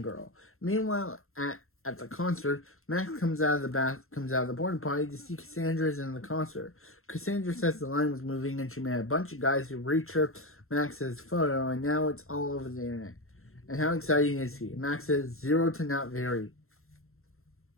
Meanwhile, at the concert, Max comes out of the porta potty to see Cassandra's in the concert. Cassandra says the line was moving, and she met a bunch of guys who reached Max's photo, and now it's all over the internet. And how exciting is he? Max says 0 to not very.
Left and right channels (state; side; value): late; right; 0.62 ms